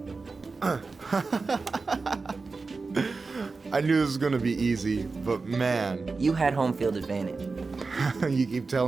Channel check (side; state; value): left; quieter; 4.1 dB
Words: I knew this was gonna be easy, but man, You had home field advantage. you keep